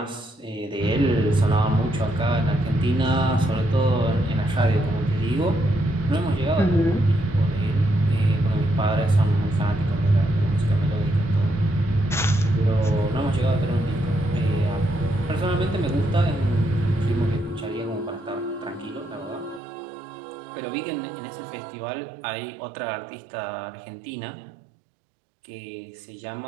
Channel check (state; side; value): drops out; left; at 19.6 s